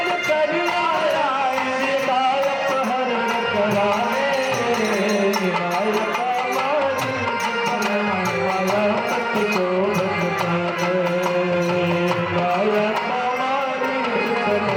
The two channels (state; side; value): identical; both; correlation 1.00